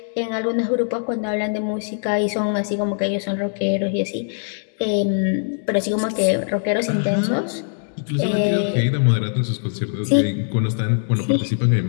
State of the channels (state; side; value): silent; right; digital silence